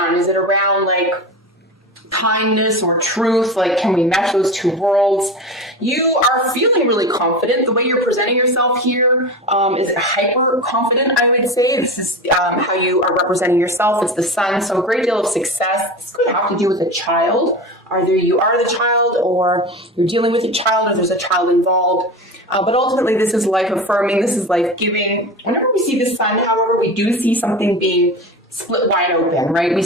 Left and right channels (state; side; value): normal; both; correlation 0.27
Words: Is it around like kindness or truth? Like, can we mesh those two worlds? You are feeling really confident. The way you're presenting yourself here is hyper confident, I would say. This is how you are representing yourself. It's the sun, so a great deal of success. This could have to do with a child. Either you are the child, or you're dealing with a child, or there's a child involved. But ultimately, this is life affirming. This is life giving. Whenever we see the sun, however, we do see something being split wide open, right? We